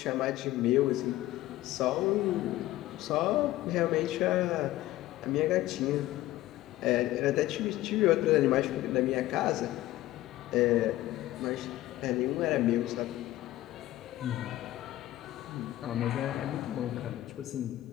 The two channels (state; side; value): quieter; right; 15.7 dB